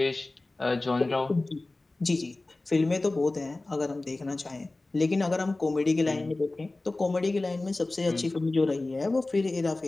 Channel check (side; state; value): right; quieter; 3.0 dB